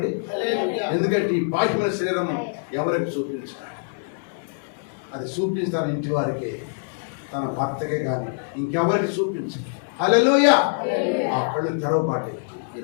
ఎందుకంటే ఈ బాహ్యమైన శరీరం ఎవరికి చూపించారు? అది చూపిస్తాను ఇంటి వారికి, తన భర్తకే కానీ ఇంకెవరికి చూపించు. హల్లెలూయా. ఆ కళ్ళు తెరవబాటే. ఈ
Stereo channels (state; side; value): silent; right; 62 dB below the other